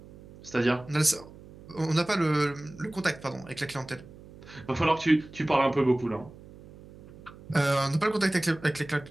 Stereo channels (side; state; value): right; noise; hum, 20 dB below the sound